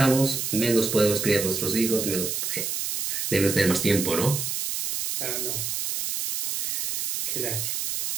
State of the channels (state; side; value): noise; right; hiss, 2 dB below the sound